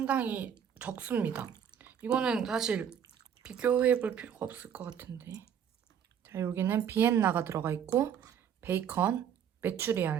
적습니다. 이거는 사실 비교해볼 필요가 없을 것 같은데. 자, 여기는 비엔나가 들어가 있고 베이컨,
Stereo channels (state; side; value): quieter; left; 8.5 dB